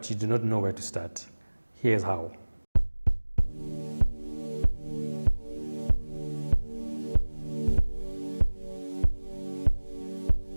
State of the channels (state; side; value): inverted; both; correlation -1.00